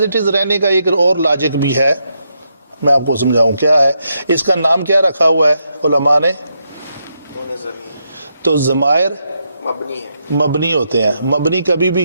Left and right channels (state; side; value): inverted; both; correlation -0.81